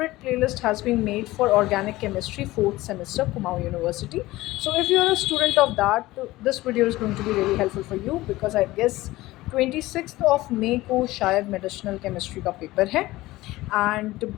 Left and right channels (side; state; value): right; quieter; 18.2 dB